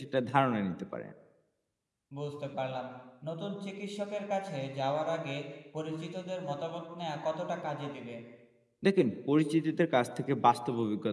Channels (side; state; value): both; identical; correlation 1.00